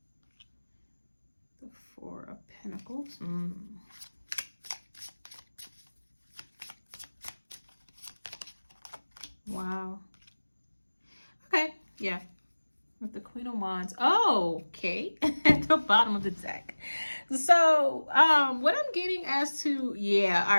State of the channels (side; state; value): both; inverted; correlation -1.00